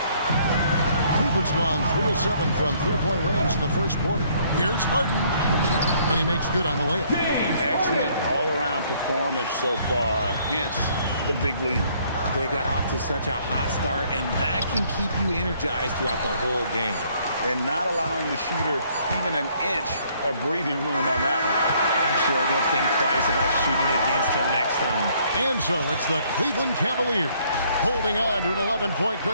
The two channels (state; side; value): inverted; both; correlation -0.64